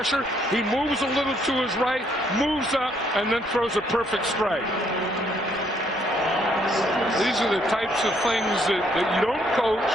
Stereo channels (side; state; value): both; normal; correlation 0.69